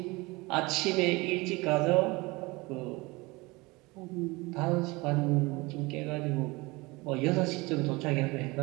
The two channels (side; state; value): left; quieter; 23.6 dB